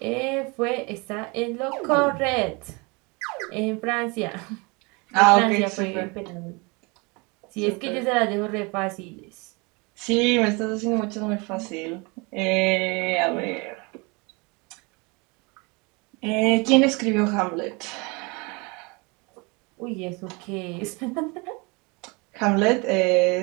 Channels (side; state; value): left; quieter; 28.5 dB